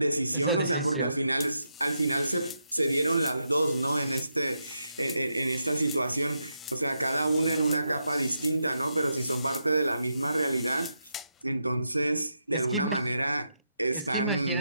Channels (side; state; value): both; inverted; correlation -0.83